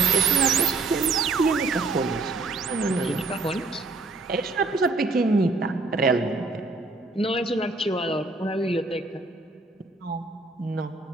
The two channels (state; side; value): quieter; left; 3.6 dB